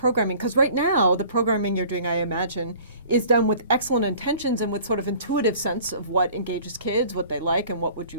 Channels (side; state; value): both; inverted; correlation -0.49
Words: because right now the programming you're doing, I imagine, is done with excellent intentions and with sort of intuitive sense of what engages kids, what they like, and what would you